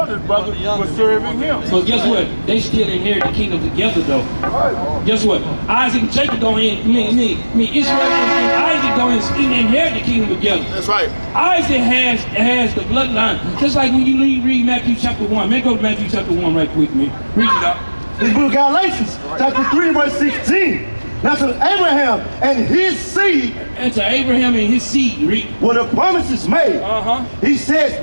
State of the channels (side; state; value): both; inverted; correlation -1.00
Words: brother was serving him. But guess what? They still inherit the kingdom together though. Guess what? Isaac and Jacob don't Israel and Isaac don't inherit the kingdom together. That's right. Isaac has the bloodline. Just like when you read Matthew chapter 1. Man, go to Matthew chapter 1 right quick, man. Read it out. The book of Galatians, chapter 3, verse 16. Now to Abraham and his seed. And to Abraham and his seed, read. Were the promises made. He says